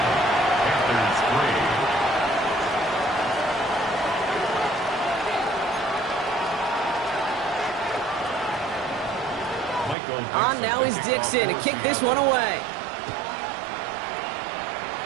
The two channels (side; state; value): left; drops out; at 10.0 s